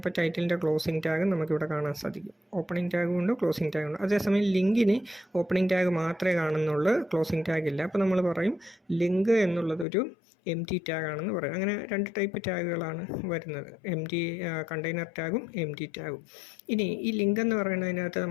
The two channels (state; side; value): drops out; right; at 9.9 s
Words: ടൈറ്റിലിൻ്റെ ക്ലോസിംഗ് ടാഗ് നമുക്കിവിടെ കാണാൻ സാധിക്കും. ഓപ്പണിംഗ് ടാഗും ഉണ്ട്, ക്ലോസിംഗ് ടാഗും ഉണ്ട്. അതേസമയം ലിങ്കിന് ഓപ്പണിംഗ് ടാഗ് മാത്രമേ കാണുന്നുള്ളൂ, ക്ലോസിംഗ് ടാഗ് ഇല്ല. അപ്പോൾ നമ്മൾ പറയും ലിങ്ക് എന്നുള്ളതൊരു empty ടാഗാണെന്ന് പറയും. അങ്ങനെ 2 ടൈപ്പ് ടാഗുകളാണ് വരുന്നത്, കണ്ടെയ്നർ ടാഗും empty ടാഗും. ഇനി ഈ ലിങ്ക് എന്ന് പറയുന്നതിനകത്ത്